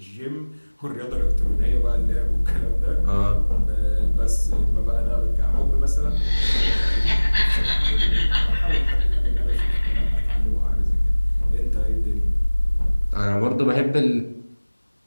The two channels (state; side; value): inverted; both; correlation -1.00